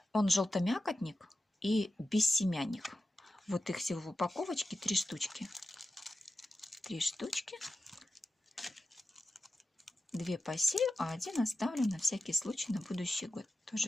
он желтомякотник и бессемянник. Вот их всего в упаковочке 3 штучки. 3 штучки. 2 посею, а 1 оставлю на всякий случай на будущий год. То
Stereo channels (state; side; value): normal; both; correlation 0.92